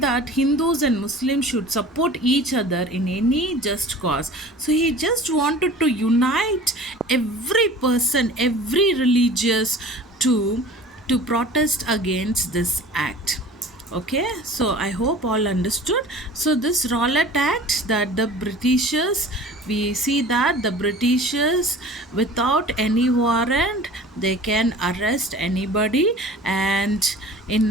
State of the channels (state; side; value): normal; both; correlation 0.43